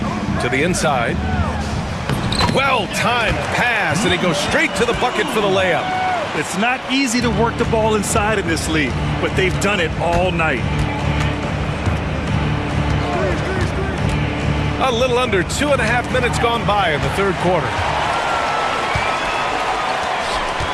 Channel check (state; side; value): identical; both; correlation 1.00